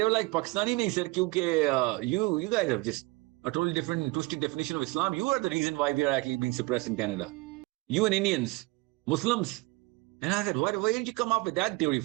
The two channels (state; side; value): quieter; left; 23.8 dB